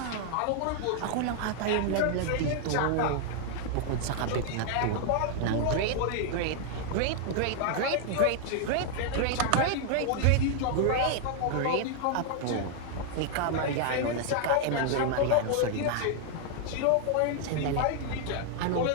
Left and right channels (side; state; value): both; different; correlation 0.00